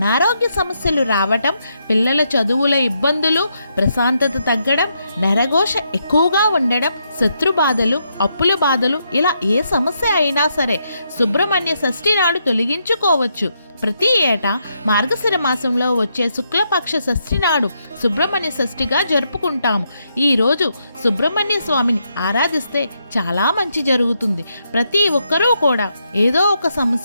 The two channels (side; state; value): both; inverted; correlation -0.79